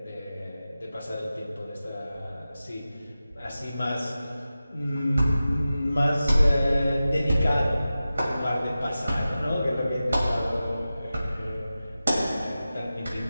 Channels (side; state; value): both; inverted; correlation -0.94